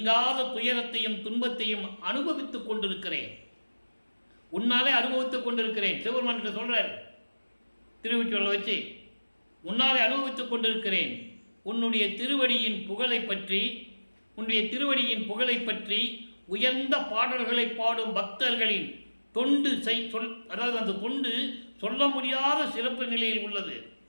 துயரத்தையும் துன்பத்தையும் அனுபவித்துக் கொண்டிருக்கிறேன். உன்னாலே அனுபவித்துக் கொண்டிருக்கிறேன். சிவபெருமான் சொல்றார் திருவொற்றியூர்ல வச்சு, உன்னாலே அனுபவித்துக் கொண்டிருக்கிறேன். உன்னுடைய திருவடியின் புகழை பற்றி உயர்ந்த பாடல்களை பாடும் பக்தர்களின் தொண்டு அதாவது அந்த தொண்டு சொல்ல முடியாத சிறப்பு நிலையில் உள்ளது.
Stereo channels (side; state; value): both; inverted; correlation -1.00